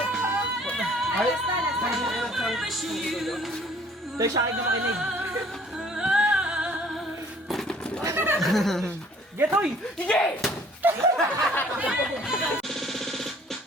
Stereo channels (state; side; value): normal; both; correlation 0.56